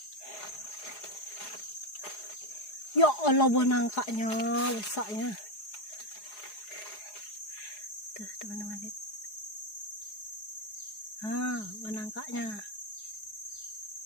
Ya Allah, buah nangkanya besarnya. Tuh teman-teman lihat. Buah nangkanya.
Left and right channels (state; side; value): late; right; 4.8 ms